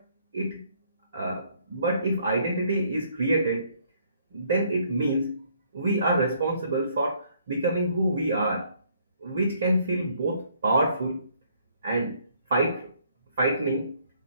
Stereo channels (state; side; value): inverted; both; correlation -0.66